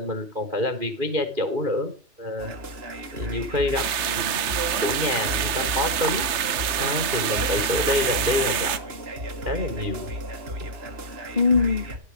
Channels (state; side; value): late; left; 3.2 ms